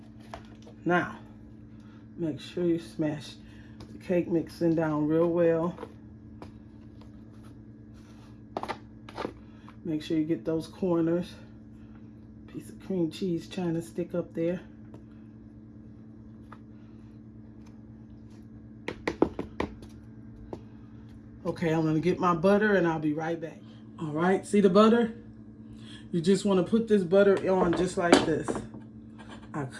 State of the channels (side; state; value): both; identical; correlation 1.00